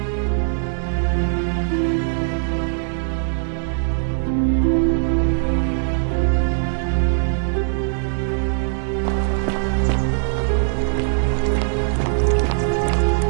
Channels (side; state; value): left; silent; digital silence